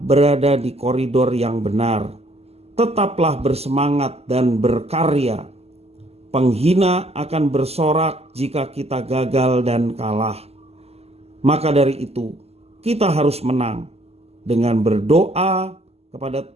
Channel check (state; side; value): late; left; 0.30 ms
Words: berada di koridor yang benar. Tetaplah bersemangat dan berkarya. Penghina akan bersorak jika kita gagal dan kalah. Maka dari itu, kita harus menang dengan berdoa kepada